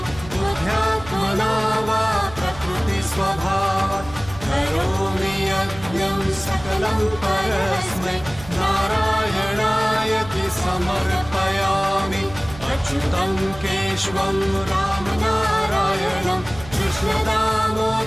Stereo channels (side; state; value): right; noise; hum, 16 dB below the sound